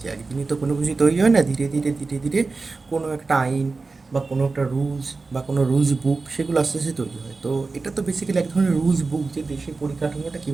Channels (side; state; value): left; quieter; 3.9 dB